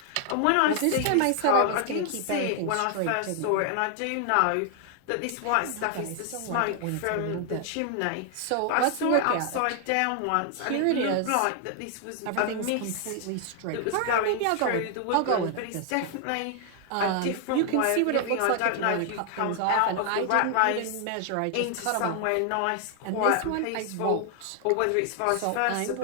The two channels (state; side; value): different; both; correlation 0.00